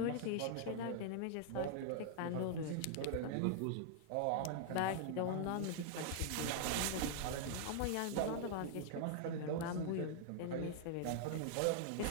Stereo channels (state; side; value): different; both; correlation -0.01